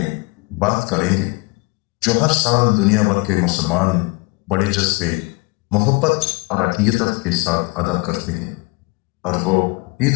بات کریں گے جو ہر سال دنیا بھر کے مسلمان بڑے جذبے، محبت اور عقیدت کے ساتھ ادا کرتے ہیں، اور وہ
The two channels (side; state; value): right; quieter; 25.5 dB